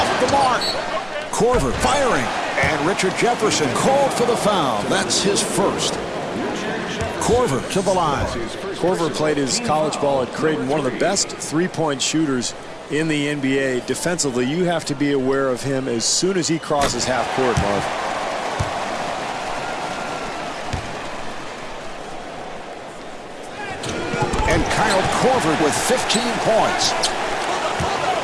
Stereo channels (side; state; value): both; identical; correlation 1.00